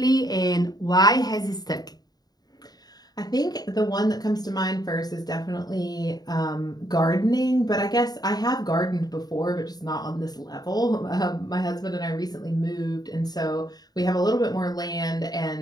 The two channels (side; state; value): right; late; 0.19 ms